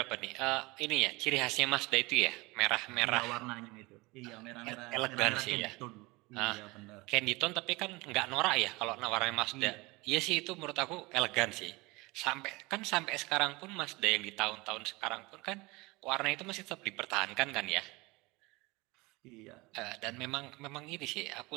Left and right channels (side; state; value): left; quieter; 23.6 dB